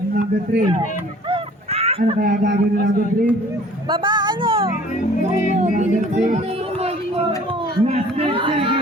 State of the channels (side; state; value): both; normal; correlation 0.51